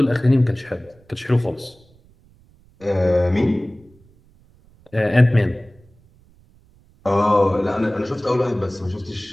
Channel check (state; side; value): noise; right; rumble, 30 dB below the sound